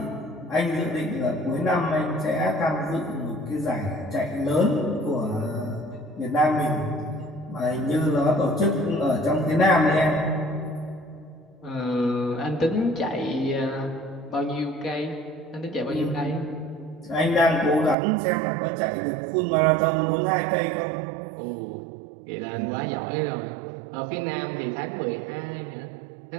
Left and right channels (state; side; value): drops out; left; at 17.9 s